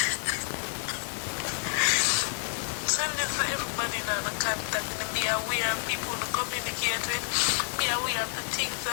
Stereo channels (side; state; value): right; silent; digital silence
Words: Send this for everybody now to contact and be aware of people to communicate with. Be aware of the things